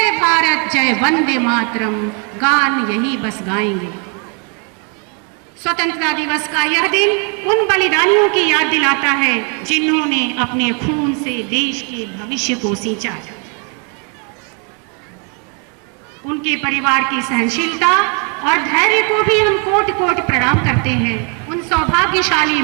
भारत जय वंदे मातरम गान यही बस गाएंगे। स्वतंत्रता दिवस का यह दिन उन बलिदानियों की याद दिलाता है जिन्होंने अपने खून से देश के भविष्य को सींचा। उनके परिवार की सहनशीलता और धैर्य को भी हम कोटि कोटि प्रणाम करते हैं। उन सौभाग्यशाली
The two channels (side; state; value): left; quieter; 36.9 dB